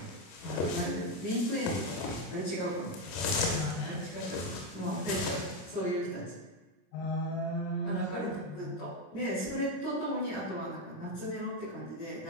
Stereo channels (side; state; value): right; late; 26 ms